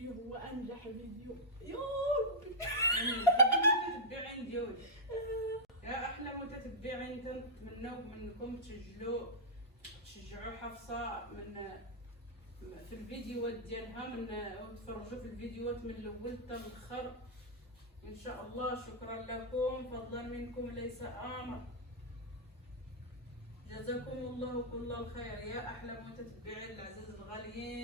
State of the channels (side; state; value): both; normal; correlation -0.09